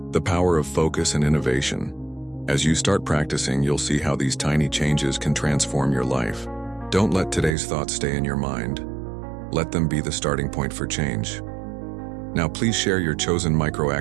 the power of focus and innovation. As you start practicing, you'll see how these tiny changes can transform your life. Don't let today's thoughts stay in your mind. Let them be the starting point for change. Now please share your chosen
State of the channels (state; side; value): drops out; left; at 7.6 s